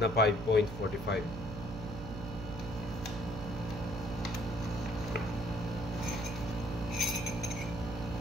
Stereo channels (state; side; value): noise; right; hum, 9 dB below the sound